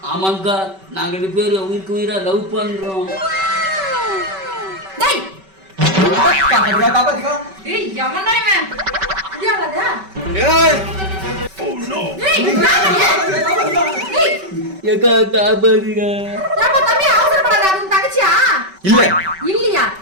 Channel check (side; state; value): left; late; 5.2 ms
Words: ஆமாங்கா, நாங்க 2 பேரும் உயிருக்கு உயிரா லவ் பண்றோம். டேய் காப்பாத்துக்கா, காப்பாத்துக்கா. டேய் எவன்டா இவன்? இடியாடா. ஏய் ஓ நோ. டேய் காப்பாத்துக்கா. டேய் ஏக்கா காப்பாத்துங்க. ஏப்பா தம்பி அவசரப்படாத. அது உன் தங்கச்சியா? இல்ல இல்லையா?